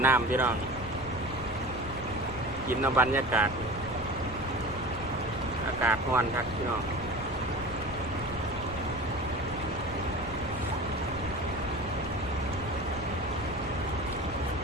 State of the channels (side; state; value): left; noise; rumble, 12 dB below the sound